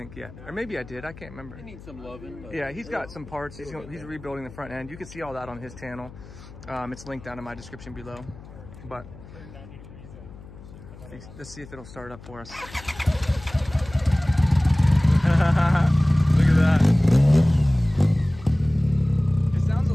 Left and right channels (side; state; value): left; noise; hum, 18 dB below the sound